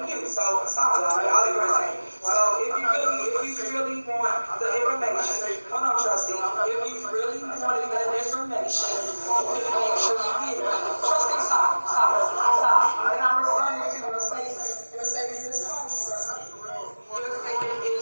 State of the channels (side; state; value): both; inverted; correlation -1.00